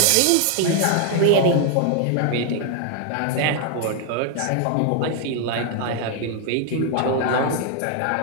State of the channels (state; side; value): different; both; correlation 0.00